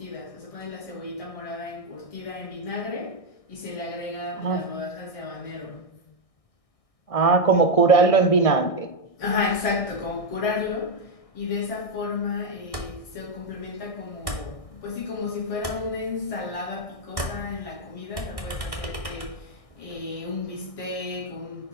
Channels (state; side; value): late; right; 1.6 ms